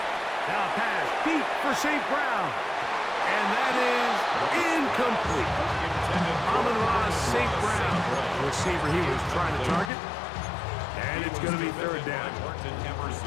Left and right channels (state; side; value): drops out; right; at 9.9 s